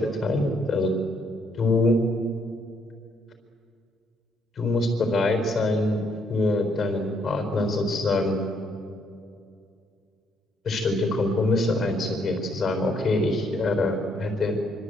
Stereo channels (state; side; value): normal; both; correlation 0.70